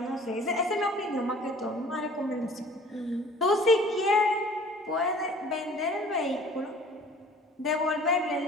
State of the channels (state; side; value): normal; both; correlation 0.49